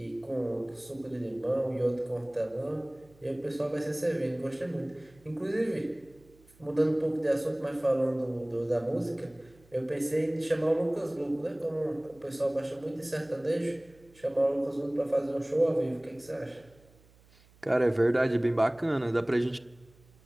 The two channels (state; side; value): noise; right; hum, 28 dB below the sound